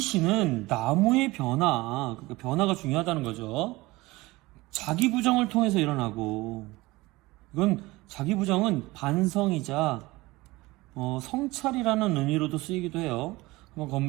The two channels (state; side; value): quieter; left; 20.7 dB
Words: 나무의 변화, 그러니까 변화가 중요하다는 거죠. 자기 부정을 통해서 일어나고, 이건 자기 부정은 반성이자 성찰이라는 의미로도 쓰이기도 해요. 한번